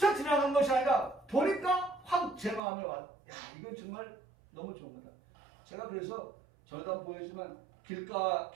지나간 것이 아니라 보니까 확 제 마음에 와. 야, 이건 정말 너무 좋은 거다. 제가 그래서 저도 한번 보여주지만 길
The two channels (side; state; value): left; drops out; at 2.6 s